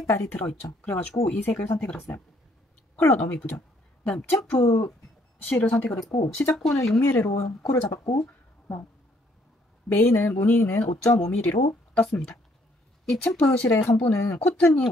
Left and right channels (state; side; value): normal; both; correlation 0.66